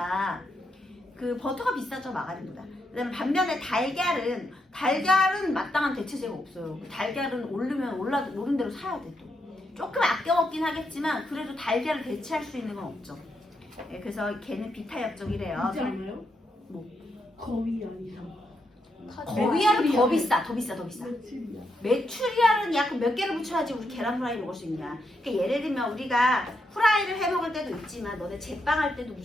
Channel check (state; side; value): normal; both; correlation 0.81